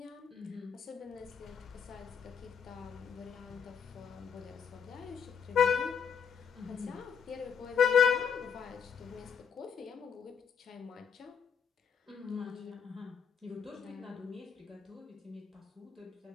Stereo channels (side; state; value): right; quieter; 7.1 dB